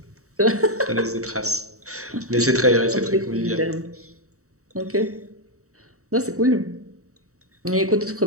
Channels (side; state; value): left; late; 0.65 ms